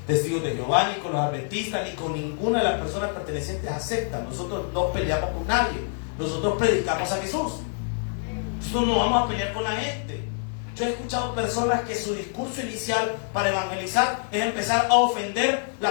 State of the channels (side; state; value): right; silent; digital silence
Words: testigos de Jehová, ni con los adventistas, ni con ninguna de las personas pertenecientes a sectas. Nosotros no peleamos con nadie. Nosotros predicamos a Jesús. Nosotros no vamos a pelear con la gente. Yo he escuchado personas que su discurso inicial para evangelizar es empezar a ofender la